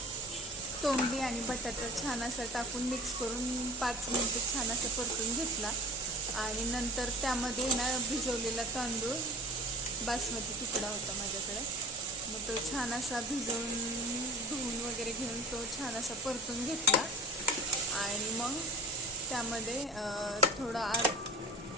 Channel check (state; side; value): normal; both; correlation 0.39